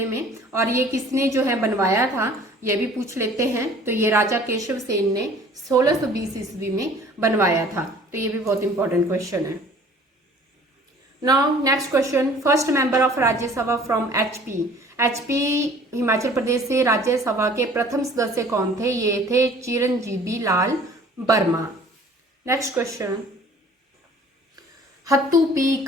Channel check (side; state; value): both; normal; correlation 0.51